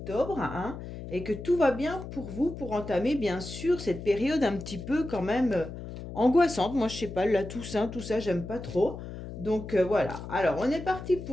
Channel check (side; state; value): left; noise; hum, 10 dB below the sound